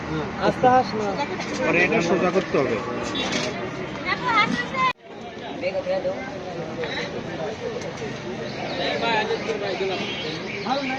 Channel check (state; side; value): identical; both; correlation 1.00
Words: পরে এটা সোজা করতে হবে।